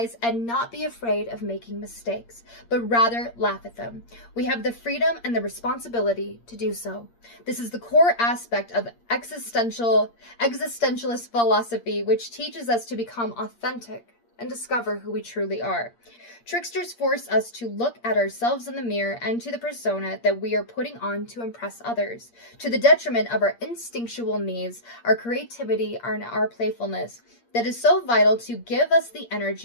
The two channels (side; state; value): right; late; 8.6 ms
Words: and not be afraid of making mistakes, but rather laugh at them. We have the freedom and the responsibility to do so. This is the core aspect of existentialist philosophy, which teaches us to become authentic and discover who we truly are. Tricksters force us to look at ourselves in the mirror and to the persona that we are putting on to impress others, to the detriment of our instinctual needs, our creativity, and our playfulness that is so vital to give us the